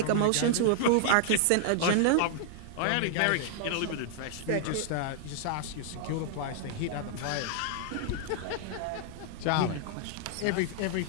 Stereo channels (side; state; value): both; different; correlation -0.01